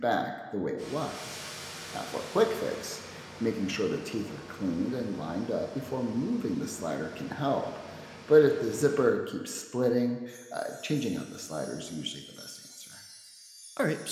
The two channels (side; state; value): both; identical; correlation 1.00